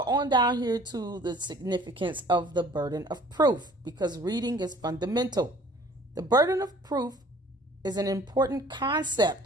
on down here to the significance of the burden of proof, because reading is fundamental. The burden of proof is an important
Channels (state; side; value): normal; both; correlation 0.52